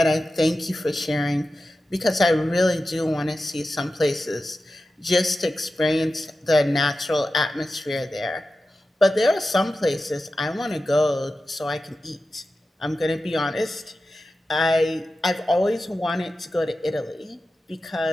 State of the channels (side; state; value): both; normal; correlation 0.93